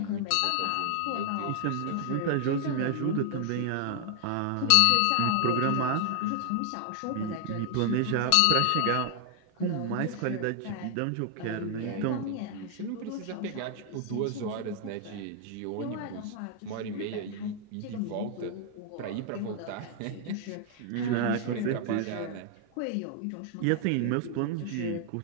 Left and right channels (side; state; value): both; different; correlation 0.00